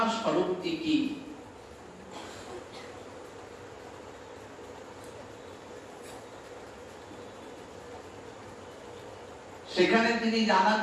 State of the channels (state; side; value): identical; both; correlation 1.00